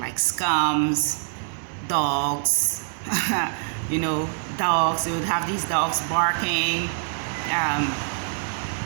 scums, dogs. You know, dogs. They would have these dogs barking.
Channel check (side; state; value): left; silent; 59 dB below the other